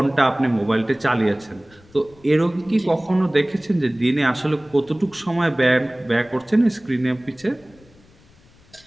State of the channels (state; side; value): noise; left; rumble, 28 dB below the sound